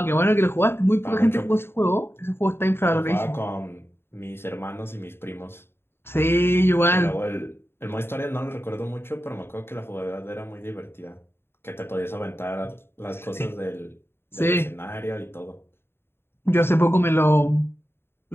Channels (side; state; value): right; late; 0.11 ms